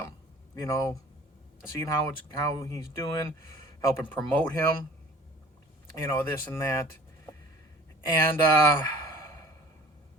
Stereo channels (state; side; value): normal; both; correlation 0.47